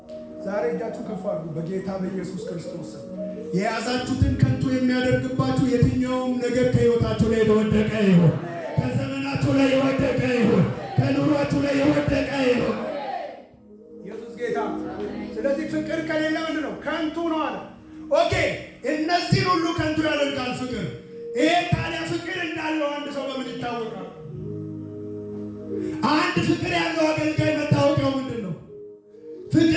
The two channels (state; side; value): identical; both; correlation 1.00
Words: ዛሬ እጃችሁ ከፍ አድርጉ በጌታ በኢየሱስ ክርስቶስ። የያዛችሁትን ከንቱ የሚያደርግባችሁ የትኛውም ነገር ከህይወታችሁ ላይ የወደቀ ይሁን፣ ከዘመናችሁ ላይ የወደቀ ይሁን፣ ከኑሯችሁ ላይ የወደቀ ይሁን። ኢየሱስ ጌታ። ስለዚህ ፍቅር ከሌለ ምንድን ነው? ከንቱ ነው አለ። ኦኬ፣ እነዚህን ሁሉ ከንቱ ያደርጋል ፍቅር። ይሄ ታዲያ ፍቅር እንዳለው አንድ ሰው በምን ይታወቃል? አንድ ፍቅር ያለው አገልጋይ መታወቂያው ምንድን ነው?